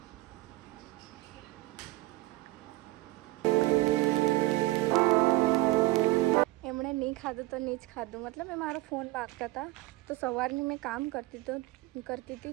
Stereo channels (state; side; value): quieter; left; 19.5 dB